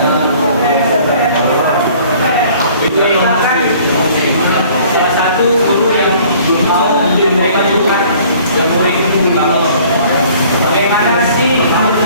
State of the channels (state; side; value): inverted; both; correlation -0.54